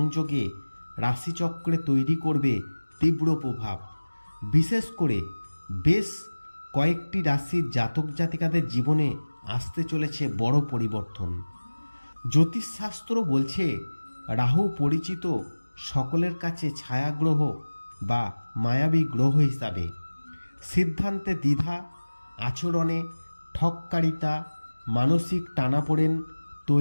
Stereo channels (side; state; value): both; inverted; correlation -1.00